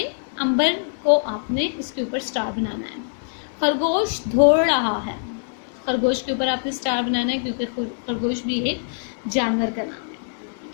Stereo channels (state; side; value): silent; right; digital silence